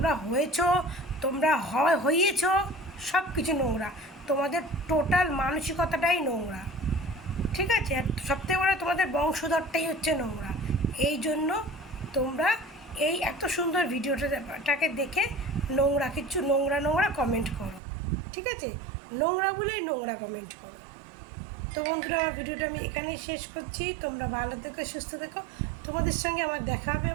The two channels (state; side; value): drops out; left; at 17.8 s